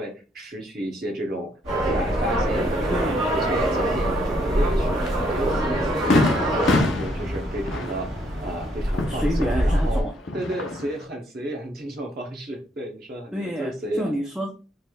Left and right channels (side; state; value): both; normal; correlation 0.71